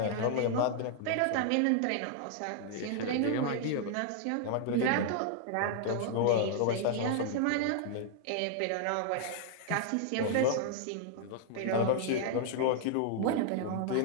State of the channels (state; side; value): different; both; correlation 0.00